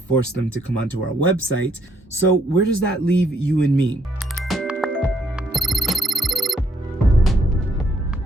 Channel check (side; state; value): both; normal; correlation 0.69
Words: them to come onto our website. So where does that leave you and me?